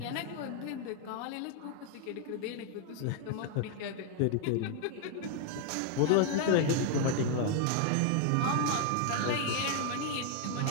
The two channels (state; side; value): different; both; correlation 0.00